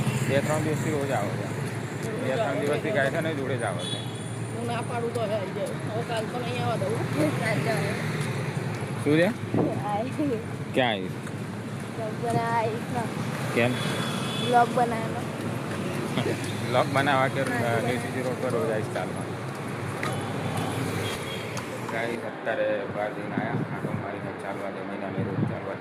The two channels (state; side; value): identical; both; correlation 1.00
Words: 2-3 દિવસથી રોજ આવે છે. 2-3 દિવસથી ગાય છે ને જોડે જ આવે છે. હું ના પાડું તો હવે કાલ તો નહીં આવવા દઉં. શું છે? ક્યાં આવીશ? કેમ? બ્લોગ બનાવવાનો. બ્લોગ બનાવવા કે સીધી રોડ પર રોજ આવીશ ચાલવા. ગાય અત્યારે બહાર જઈને આવ્યા, આટો મારીને ચાલવા જમીને અમે રોજ ચાલવા